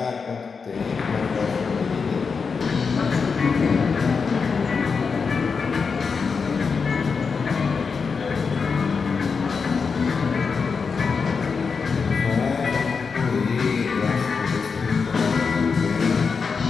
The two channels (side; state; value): right; quieter; 5.3 dB